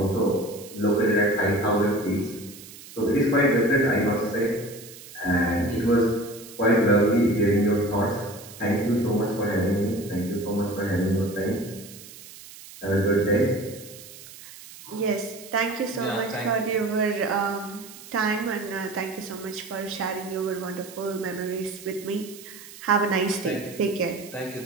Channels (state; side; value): noise; right; hiss, 17 dB below the sound